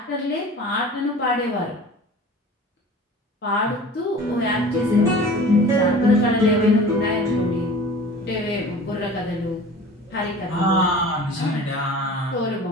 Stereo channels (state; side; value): normal; both; correlation 0.41